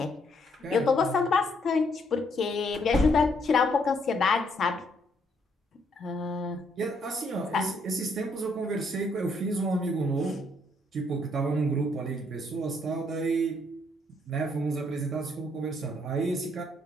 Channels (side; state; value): both; normal; correlation 0.70